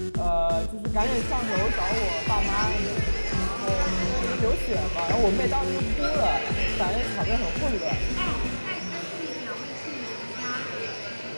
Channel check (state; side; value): inverted; both; correlation -1.00